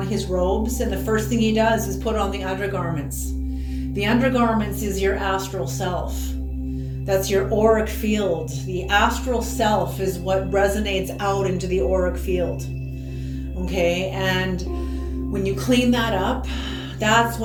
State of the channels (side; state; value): both; identical; correlation 1.00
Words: his robes. And the first thing he does is put on the undergarments. The undergarments is your astral self. That's your auric field. The astral self is what resonates out into the auric field. Okay, and when you clean that up, that's